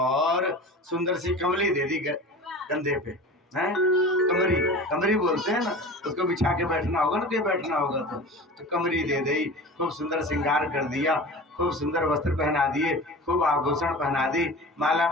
सुंदर सी कमली दे दी कंधे पे, हैं कमरी, कमरी बोलते हैं ना, उसको बिछा के बैठना होगा ना, के बैठना होगा तो कमरी दे दी। खूब सुंदर श्रृंगार कर दिया, खूब सुंदर वस्त्र पहना दिए, खूब आभूषण पहना दी, माला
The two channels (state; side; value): normal; both; correlation 0.35